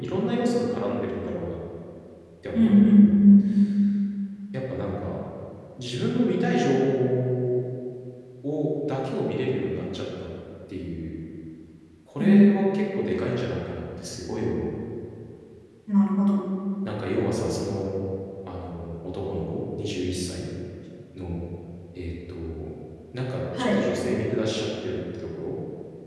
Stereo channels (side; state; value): both; identical; correlation 1.00